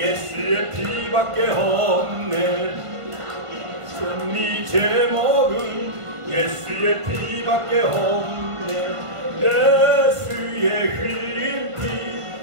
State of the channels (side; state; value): left; late; 1.5 ms